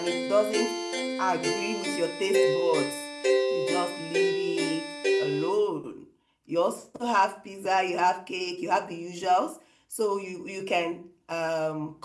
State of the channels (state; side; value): identical; both; correlation 1.00